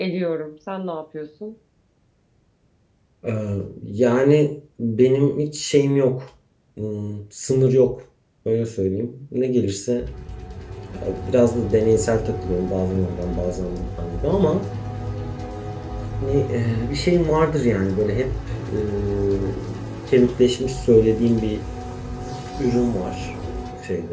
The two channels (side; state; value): both; identical; correlation 1.00